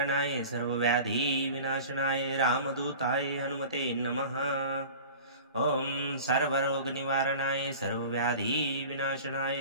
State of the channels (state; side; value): inverted; both; correlation -0.39